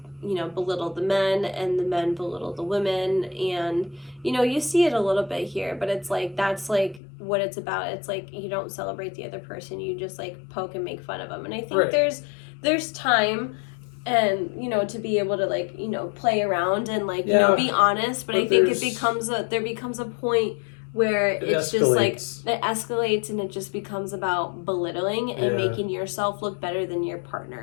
belittle the men and the men belittle the women, and you see it a little bit here, but it's like that's like what it's about. It's like you don't celebrate the other person, you just like poke and make fun of them. And I think Right. there's time and to be able to like play around and like Yeah, be honest, but but I think there becomes a point where It it's just like escalates. it escalates and it just becomes about belittling and Yeah. making yourself look better than your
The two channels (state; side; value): drops out; right; at 7.0 s